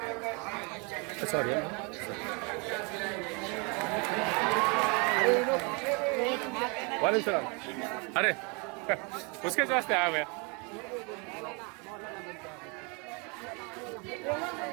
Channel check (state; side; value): quieter; left; 31.9 dB